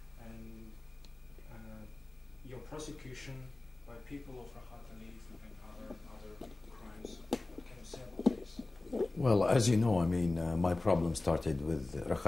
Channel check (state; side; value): quieter; right; 3.1 dB